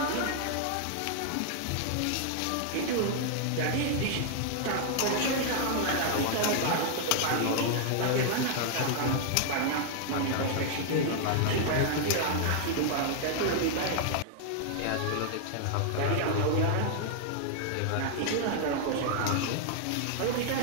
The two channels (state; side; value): different; both; correlation -0.01